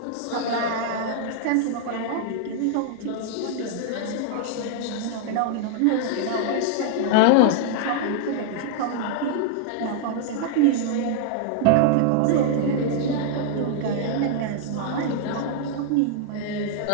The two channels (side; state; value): both; different; correlation -0.01